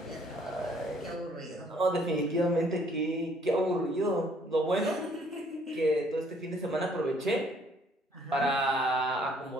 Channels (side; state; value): both; normal; correlation 0.62